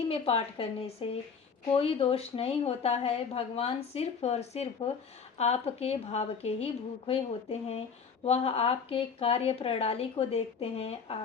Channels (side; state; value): right; quieter; 5.9 dB